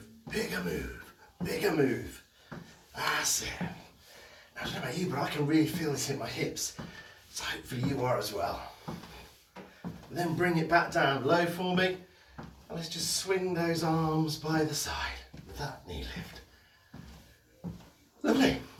bigger move, bigger move. That's it. Now, I don't know about you, but I can really feel this in my hips. So hopefully you are as well. And then bring it back down low for me. And let's just swing those arms by the side with that knee lift. Lovely.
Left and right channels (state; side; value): identical; both; correlation 1.00